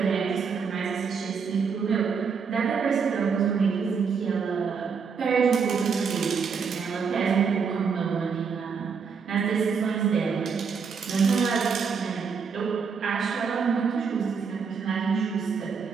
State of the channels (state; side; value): quieter; left; 5.8 dB